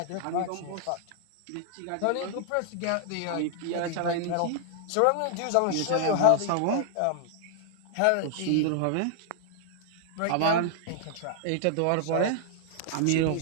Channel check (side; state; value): both; different; correlation -0.01